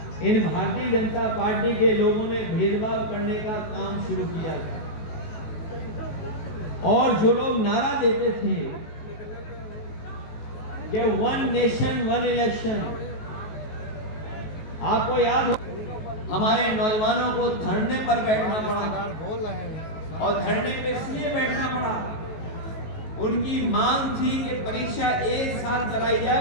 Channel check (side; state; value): right; late; 19 ms